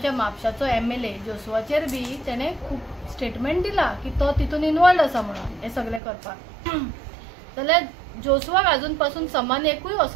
म्हापशाचो MLA जोसवाचेर बी तेणें खूब स्टेटमेंट दिला की तो तितून इनवॉल्ड आसा म्हणून हे सगळें करपाक. जाल्यार जोसवाक अजून पासून समन एकूय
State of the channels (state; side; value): drops out; left; at 6.0 s